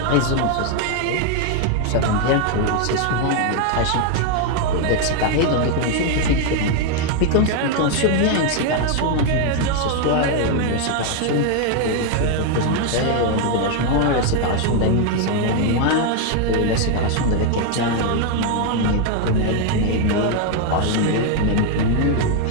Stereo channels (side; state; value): both; different; correlation 0.01